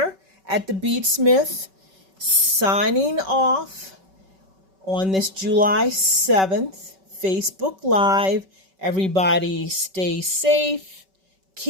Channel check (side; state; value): left; late; 5.3 ms